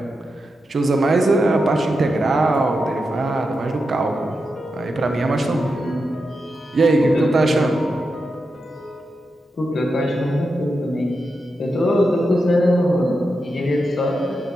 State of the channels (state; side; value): normal; both; correlation 0.88